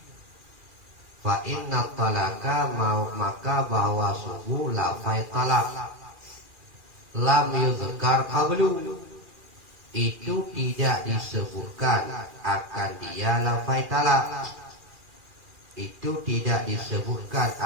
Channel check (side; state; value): left; late; 2.4 ms